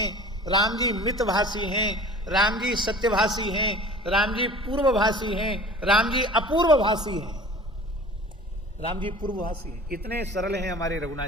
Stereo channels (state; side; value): normal; both; correlation 0.43